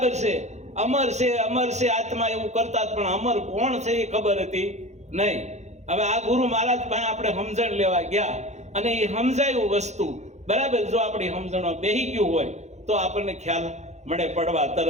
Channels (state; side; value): late; left; 0.33 ms